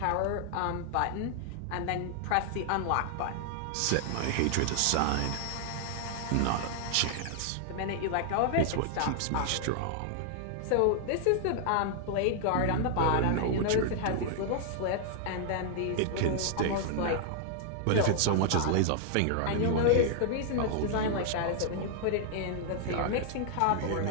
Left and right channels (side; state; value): both; different; correlation 0.00